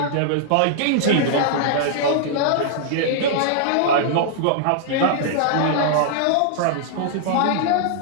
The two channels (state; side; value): different; both; correlation -0.01